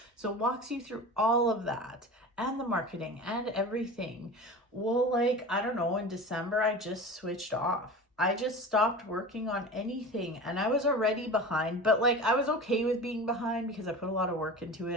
So it walks you through all of that and the marketing and everything. Well, like, I don't know, in December, I just switched off. I just stopped working on anything, and I was already behind, but like, I was okay with being behind because I put a lot of work into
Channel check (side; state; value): both; normal; correlation 0.33